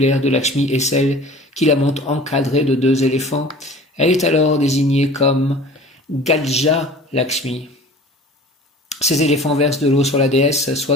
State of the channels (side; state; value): both; normal; correlation 0.43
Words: de Lakshmi est celle qui la montre encadrée de 2 éléphants. Elle est alors désignée comme Gaja Lakshmi. Ces éléphants versent de l'eau sur la déesse,